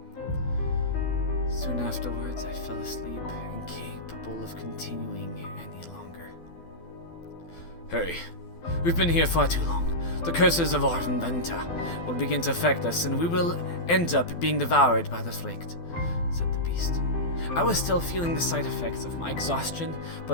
Soon afterwards, I fell asleep, incapable of continuing any longer. "Hurry. We've been here far too long. The curses of our inventor will begin to affect us, and we will end up being devoured by the Frict," said the beast. I was still feeling the side effects of my exhaustion,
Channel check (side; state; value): right; late; 12 ms